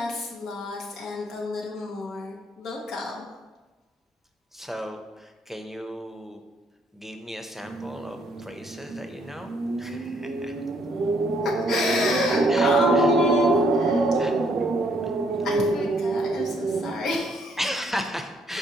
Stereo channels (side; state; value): both; normal; correlation 0.69